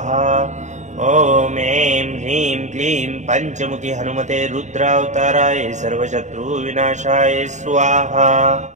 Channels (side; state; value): left; late; 0.34 ms